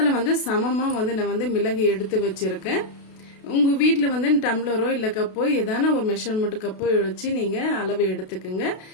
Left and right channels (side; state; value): right; late; 32 ms